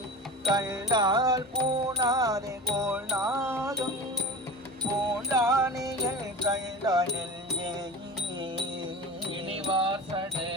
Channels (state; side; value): normal; both; correlation 0.31